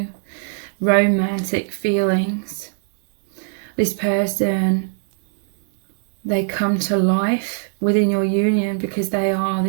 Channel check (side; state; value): left; silent; 65 dB below the other